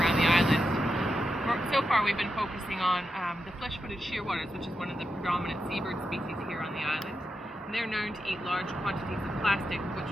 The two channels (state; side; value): normal; both; correlation 0.87